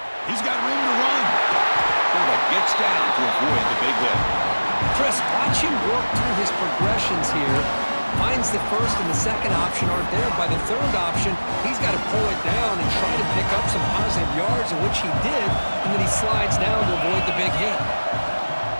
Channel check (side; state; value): both; inverted; correlation -1.00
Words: He's got room to run. Quarterback gets down to avoid the big hit. Chris, watch him work through his progressions here. Finds the first and the second option aren't there. By the third option, he's got to pull it down and try to pick up some positive yards, of which he did, and then he slides down to avoid the big hit.